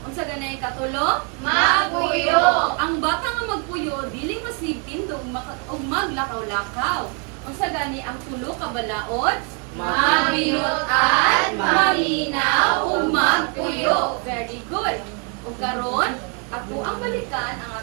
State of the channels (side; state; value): left; quieter; 36.3 dB